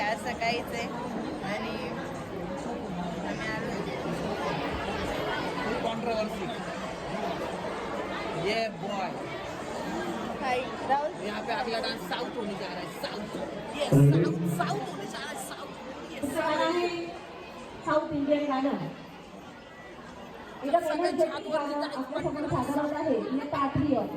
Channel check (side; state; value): both; identical; correlation 1.00